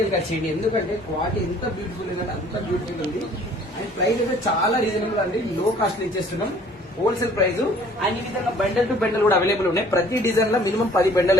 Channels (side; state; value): both; normal; correlation 0.55